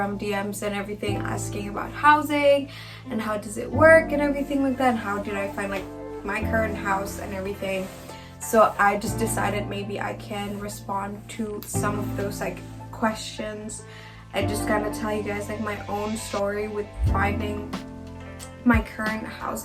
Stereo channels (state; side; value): identical; both; correlation 1.00